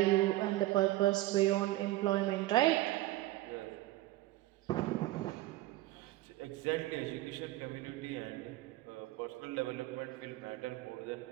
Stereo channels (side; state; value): left; quieter; 17.0 dB